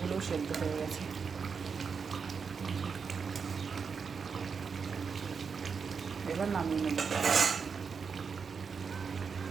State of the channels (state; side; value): quieter; left; 5.8 dB